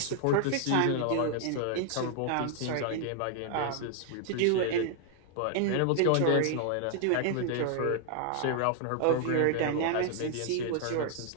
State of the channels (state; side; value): different; both; correlation 0.00